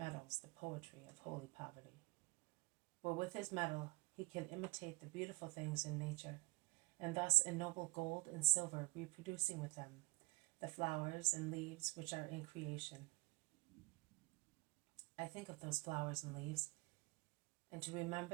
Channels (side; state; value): left; quieter; 26.7 dB